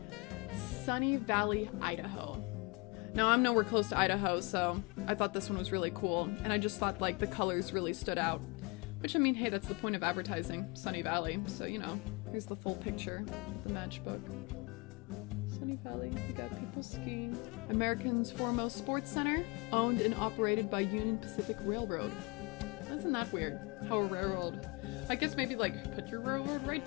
Sunny Valley, Idaho. Now, I'm nowhere close to Idaho, so I thought this one was really cool, and I just thought, like, the colors really stood out. Which, I mean, hey, that's the point of advertising, Sunny Valley, so, you know, here's the full picture of the matchbook. Sunny Valley, we got people skiing. American's Foremost Sports Center, owned and operated by Union Pacific Railroad. That's Isn't that weird? How a railroad, I guess maybe like put your railroad right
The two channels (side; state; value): right; quieter; 28.3 dB